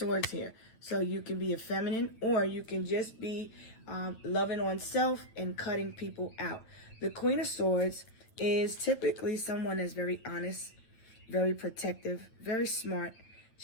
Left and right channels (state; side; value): late; right; 9.0 ms